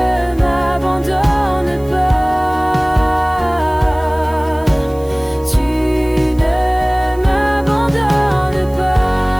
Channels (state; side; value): noise; right; hiss, 25 dB below the sound